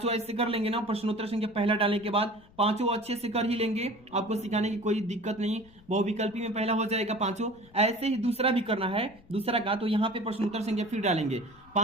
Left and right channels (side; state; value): left; noise; rumble, 26 dB below the sound